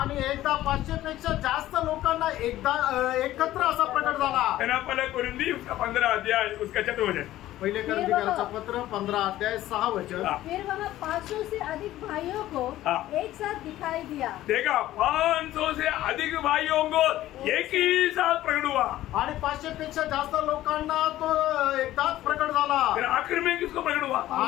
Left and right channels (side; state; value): right; quieter; 14.6 dB